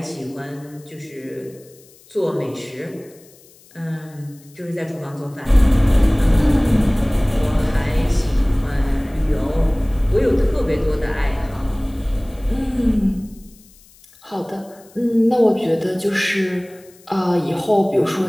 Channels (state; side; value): noise; left; hiss, 27 dB below the sound